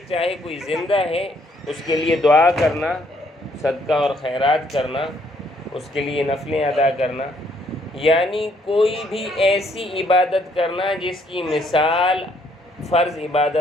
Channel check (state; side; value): normal; both; correlation 0.68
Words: چاہے کوئی زندہ ہے، اس کے لیے دعا کرنا، صدقہ اور خیرات کرنا، اس کے لیے نفلیں ادا کرنا، یعنی کوئی بھی ایسی عبادت کرنا جس کی مثال فرض